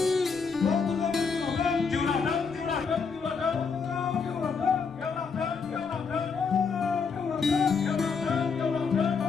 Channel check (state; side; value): quieter; right; 5.4 dB